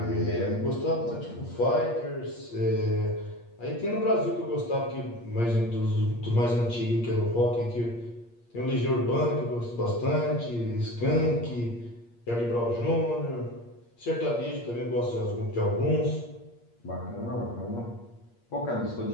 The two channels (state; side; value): late; right; 8.5 ms